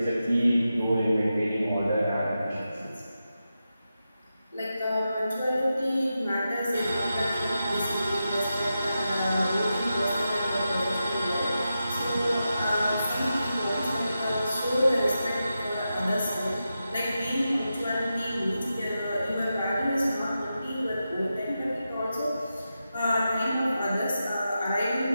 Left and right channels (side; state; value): both; inverted; correlation -0.89